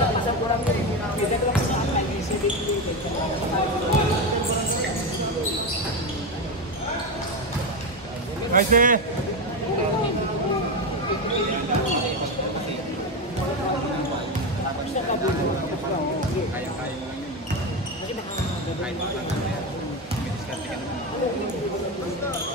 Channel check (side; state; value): both; normal; correlation 0.14